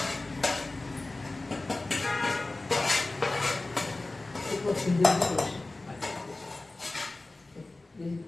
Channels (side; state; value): right; quieter; 3.0 dB